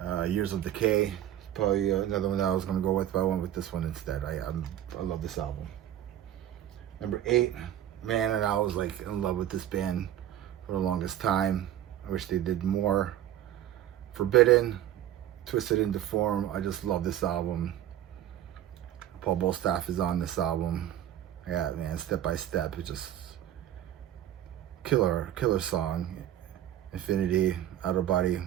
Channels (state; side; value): quieter; left; 11.9 dB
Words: Years of Decay. Probably another one that I was gonna go with, but I went with this one instead. I love this album. Number 8, man, and I was like in love with this band for the longest time. I wish they did more. Forbidden, Twisted into Form. I just love this album. Paul Bostaph is on this album. Yeah, man, Step by Step. It's just killer song. Infinity, Out of Body,